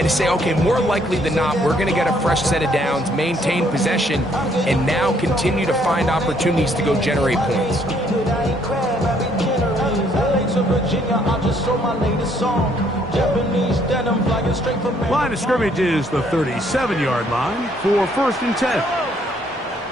to say, okay, more likely than not, we're going to get a fresh set of downs, maintain possession, and now continue to find opportunities to go generate points. Line of scrimmage is the 37-yard line for 1st and 10.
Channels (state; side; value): normal; both; correlation 0.67